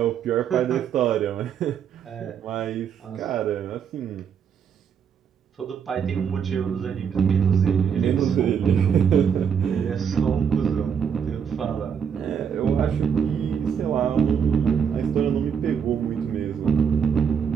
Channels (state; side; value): quieter; left; 7.4 dB